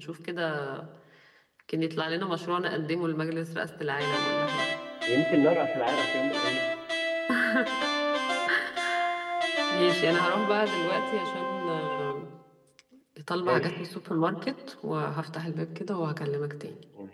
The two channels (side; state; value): both; identical; correlation 1.00